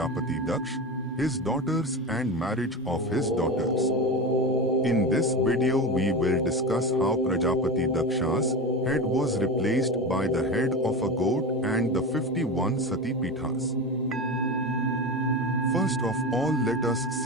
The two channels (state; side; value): normal; both; correlation 0.24